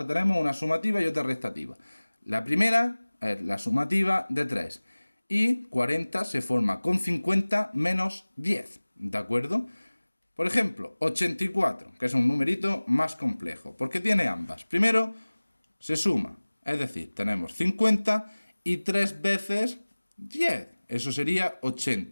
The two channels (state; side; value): inverted; both; correlation -1.00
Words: tenemos una sumativa y otra restativa. La primera es la sumativa de 3. Y 40 se forma con 50 menos 10, ¿de acuerdo? Por ejemplo, 84, que es un numerito más complejo, porque tiene ambas. Primero, se suma, es decir, tenemos 50 y 3 veces 10. Eso sería